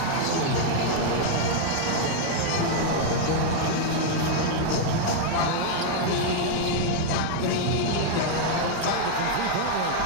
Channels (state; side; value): different; both; correlation 0.00